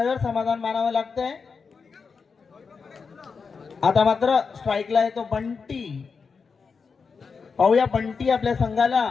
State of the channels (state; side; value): quieter; right; 5.3 dB